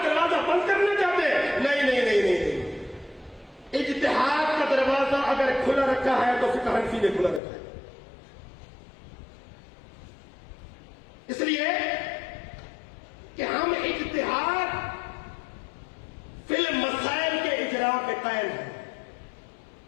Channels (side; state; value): right; drops out; at 7.4 s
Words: دروازہ بند کرنا چاہتے ہیں. نہیں نہیں نہیں نہیں. اجتہاد کا دروازہ اگر کھلا رکھا ہے تو فقہ حنفی نے کھلا رکھا ہے. اس لیے کہ ہم اجتہاد فی المسائل کے اجراء کے قائل ہیں.